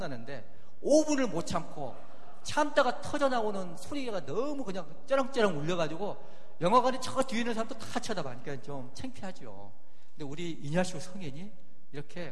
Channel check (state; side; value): identical; both; correlation 1.00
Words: 5분을 못 참다가 터져 나오는 소리가 너무 그냥 쩌렁쩌렁 울려가지고, 영화관에 저 뒤에 있는 사람도 다 쳐다보니까 좀 창피하죠. 근데 우리 이냐시오 성인이